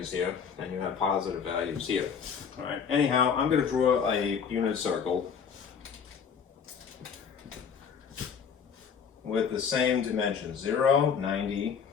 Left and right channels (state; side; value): quieter; right; 6.8 dB